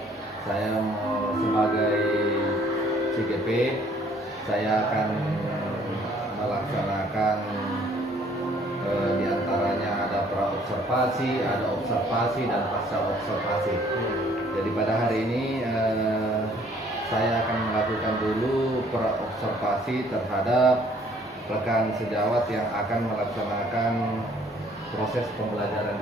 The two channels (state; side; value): normal; both; correlation 0.60